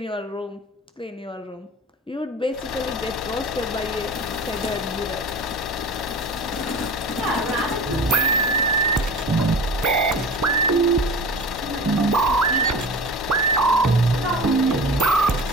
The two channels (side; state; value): both; normal; correlation 0.36